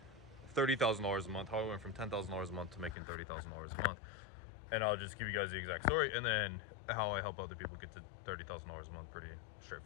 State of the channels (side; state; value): right; drops out; at 3.0 s